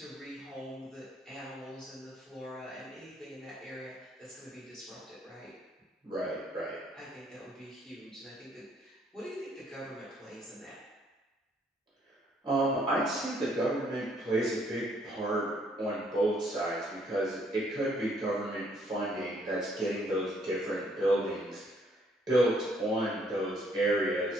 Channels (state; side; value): normal; both; correlation 0.67